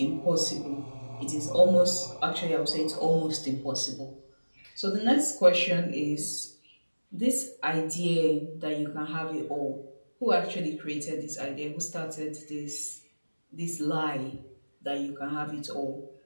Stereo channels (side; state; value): both; inverted; correlation -1.00